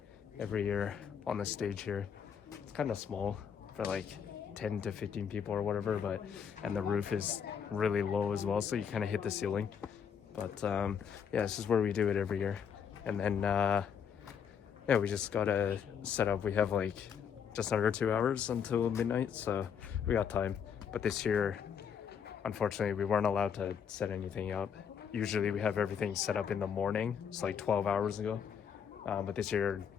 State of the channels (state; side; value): quieter; right; 7.5 dB